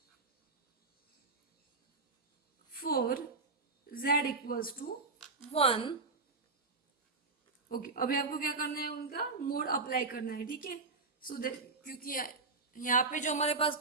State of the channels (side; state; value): left; quieter; 3.9 dB